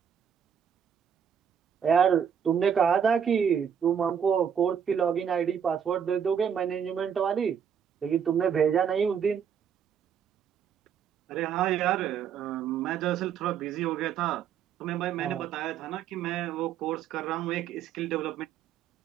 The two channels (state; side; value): quieter; left; 7.9 dB